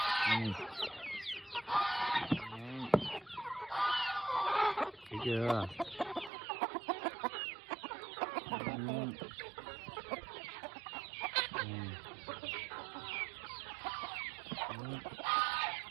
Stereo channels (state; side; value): drops out; left; at 6.3 s